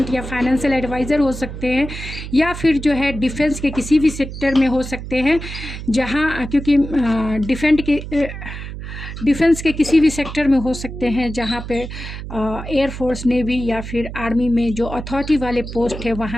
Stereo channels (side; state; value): right; noise; hum, 9 dB below the sound